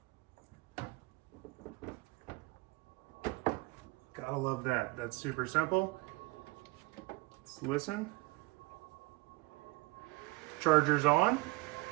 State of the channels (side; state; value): left; quieter; 24.0 dB